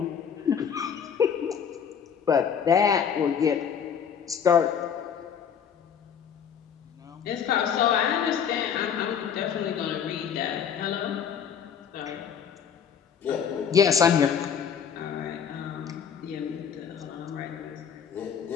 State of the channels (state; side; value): quieter; right; 7.6 dB